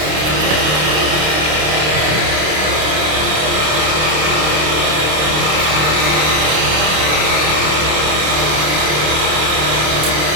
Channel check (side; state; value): left; late; 26 ms